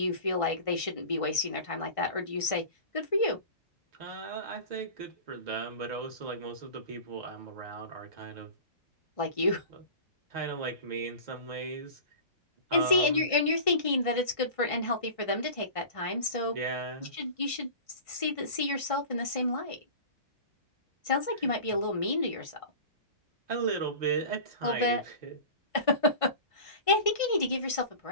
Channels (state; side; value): late; right; 1.6 ms